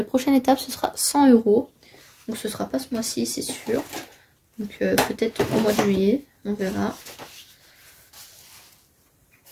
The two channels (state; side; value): identical; both; correlation 1.00